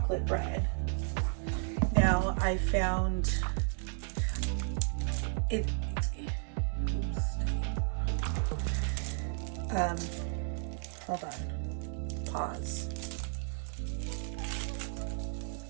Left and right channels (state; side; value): silent; left; 55 dB below the other